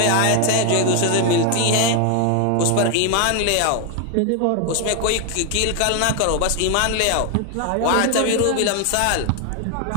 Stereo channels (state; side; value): different; both; correlation 0.01